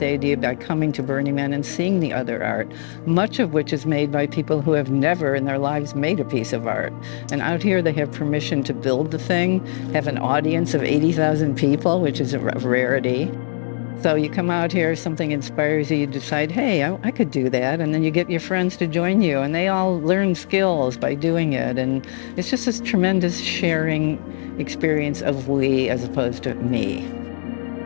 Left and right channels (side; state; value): right; silent; digital silence